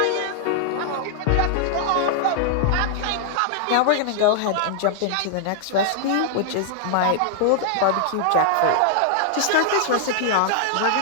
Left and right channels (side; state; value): both; different; correlation -0.01